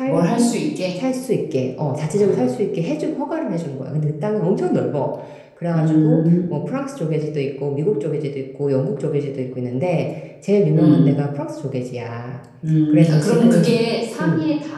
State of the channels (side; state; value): both; identical; correlation 1.00